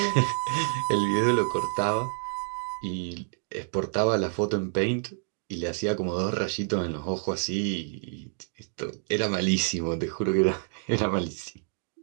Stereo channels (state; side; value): silent; left; 59 dB below the other